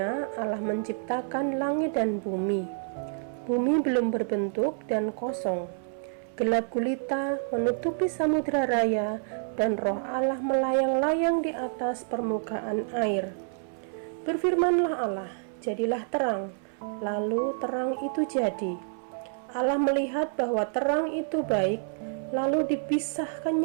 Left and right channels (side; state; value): left; silent; 59 dB below the other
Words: Allah menciptakan langit dan bumi. Bumi belum berbentuk dan kosong. Gelap gulita menutupi samudra raya dan roh Allah melayang-layang di atas permukaan air. Berfirmanlah Allah, jadilah terang. Lalu terang itu jadi. Allah melihat bahwa terang itu baik, lalu